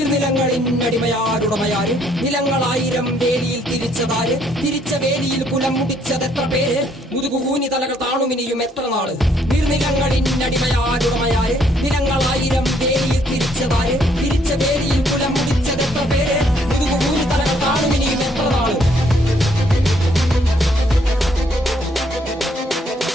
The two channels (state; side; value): normal; both; correlation 0.67